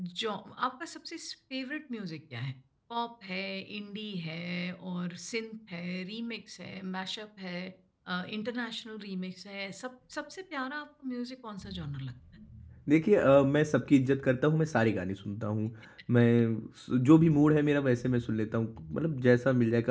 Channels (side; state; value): both; identical; correlation 1.00